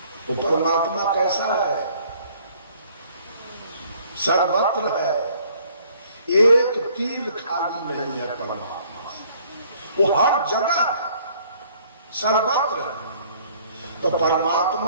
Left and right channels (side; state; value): both; inverted; correlation -0.59